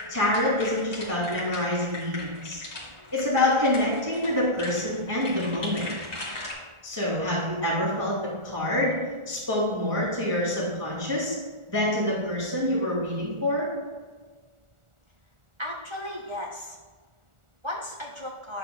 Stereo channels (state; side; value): late; left; 1.4 ms